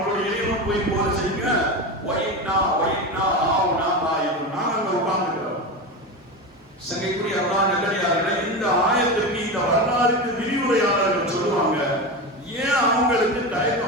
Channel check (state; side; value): normal; both; correlation 0.21